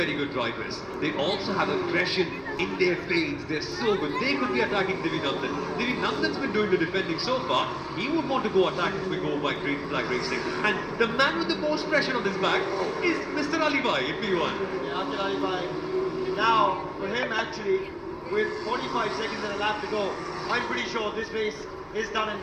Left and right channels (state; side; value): identical; both; correlation 1.00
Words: good drivers. They also have aggression in their fades. They're so good. They could be attacking Divy Nandan. Divy Nandan's been doing the defending so far. He would want to go attack if we go by green flag racing. And the man with the most pressure on his back is Mr. Alibhai in P1. Yeah, Aqil Alibhai. Now, for him actually, with 45 seconds and a lap to go, I'm pretty sure this race is done and